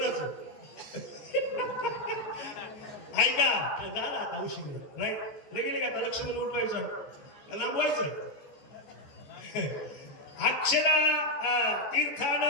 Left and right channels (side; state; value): right; late; 14 ms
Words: ऐका, झाला आता उशीर नाही गेले का? आता लक्ष्मण उठवायचं, लांबवायचं. अक्षरा